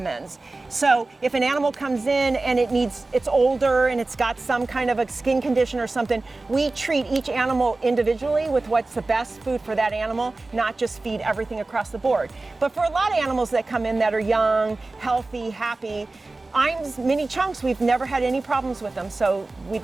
So if an animal comes in and it's older and it's got some kind of a skin condition or something, we treat each animal individually with what's the best food for that animal, not just feed everything across the board. But for a lot of animals that come in that are young, healthy, happy, Iams Mini Chunks, we've never had any problems with them, so we'd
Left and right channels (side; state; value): left; quieter; 3.3 dB